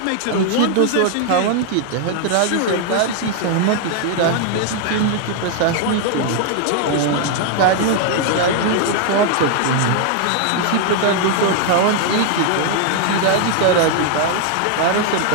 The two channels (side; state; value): both; different; correlation 0.00